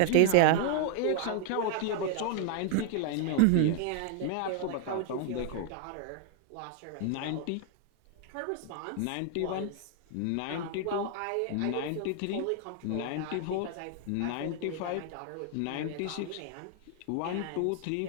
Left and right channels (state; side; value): different; both; correlation 0.00